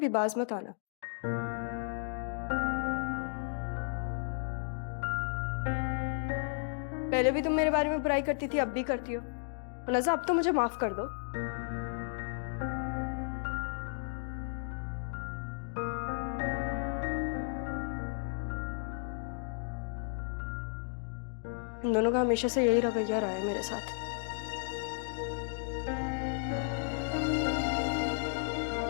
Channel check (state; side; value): silent; right; digital silence